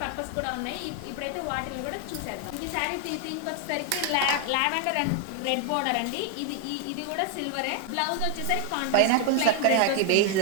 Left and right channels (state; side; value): different; both; correlation 0.00